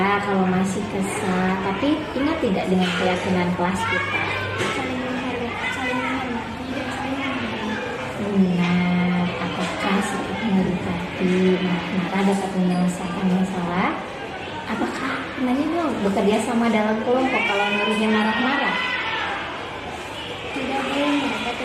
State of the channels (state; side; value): identical; both; correlation 1.00